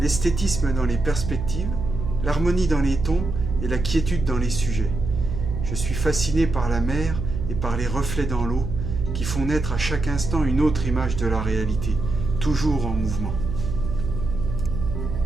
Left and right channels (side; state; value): right; noise; hum, 4 dB below the sound